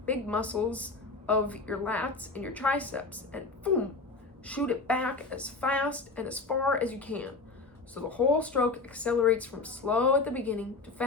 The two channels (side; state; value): right; quieter; 3.9 dB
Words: muscles of your lats and your triceps and boom, shoot it back as fast and as far as you can. So the whole stroke accelerates from slow at the beginning to